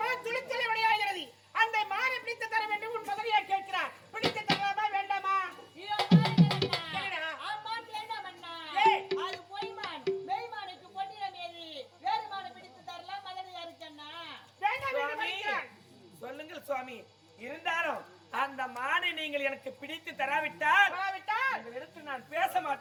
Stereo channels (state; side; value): identical; both; correlation 1.00